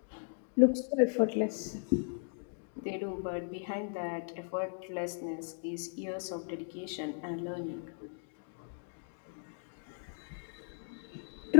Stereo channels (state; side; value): silent; right; digital silence